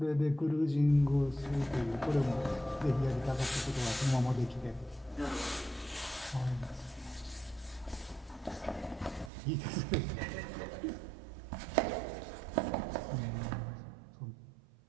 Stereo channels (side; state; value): left; drops out; at 9.3 s